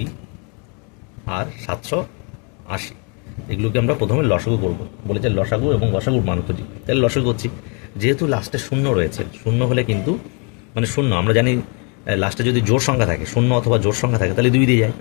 আর 780। এগুলোকে আমরা প্রথমে লসাগু করব। বলেছে লসাগু এবং গসাগুর মান খুঁজি। তাহলে লসাগু করছি। যেহেতু লাস্টে শূন্য রয়েছে, শূন্য হলে কিন্তু মানে শূন্য আমরা জানি, লাস্টে যদি জোর সংখ্যা থাকে, শূন্য অথবা জোর সংখ্যা থাকে, তাহলে 2 দিয়ে যায়।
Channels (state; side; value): quieter; right; 35.4 dB